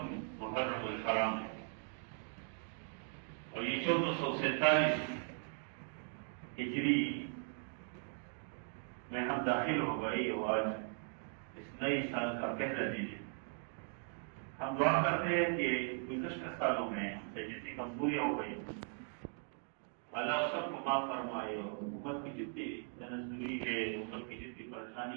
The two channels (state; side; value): silent; left; 52 dB below the other